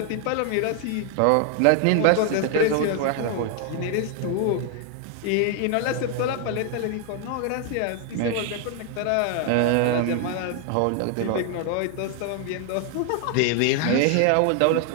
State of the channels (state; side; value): different; both; correlation 0.00